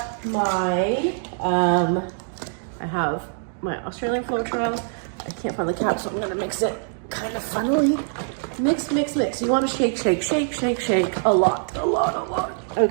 my, I have my Australian Floetrol. I can't find the cap, so I'm gonna mix it kind of funnily. Mix, mix, mix. You wanna shake, shake, shake, shake, shake a lot.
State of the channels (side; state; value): left; silent; digital silence